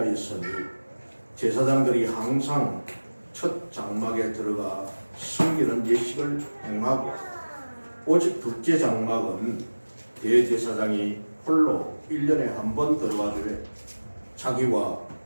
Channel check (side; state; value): both; inverted; correlation -1.00